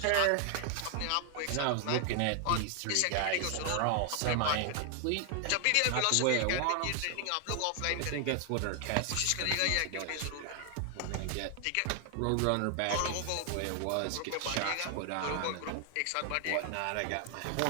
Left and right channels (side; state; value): both; different; correlation 0.00